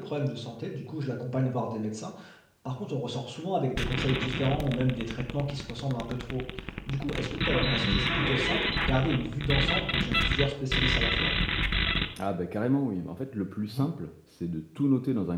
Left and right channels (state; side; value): identical; both; correlation 1.00